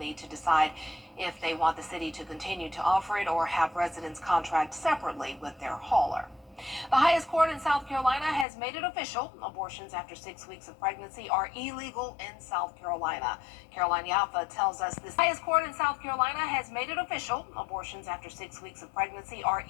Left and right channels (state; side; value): drops out; right; at 8.5 s